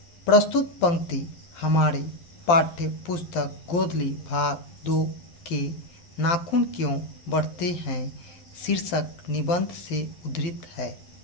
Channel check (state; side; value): late; right; 12 ms